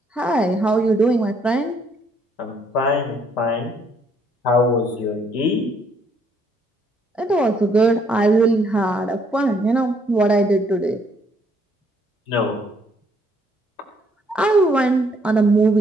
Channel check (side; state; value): both; normal; correlation 0.68